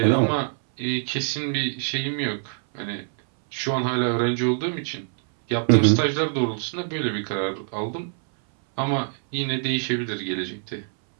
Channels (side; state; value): left; silent; 60 dB below the other